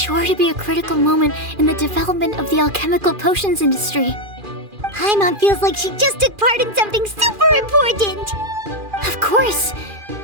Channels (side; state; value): left; late; 2.4 ms